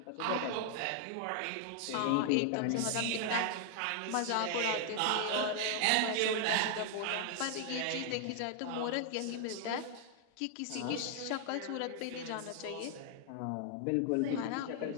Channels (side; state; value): both; different; correlation 0.00